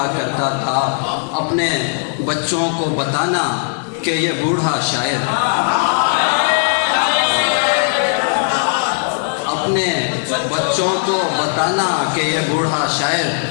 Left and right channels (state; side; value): silent; right; 66 dB below the other